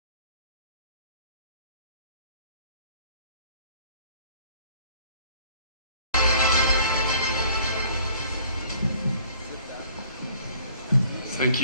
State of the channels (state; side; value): inverted; both; correlation -0.55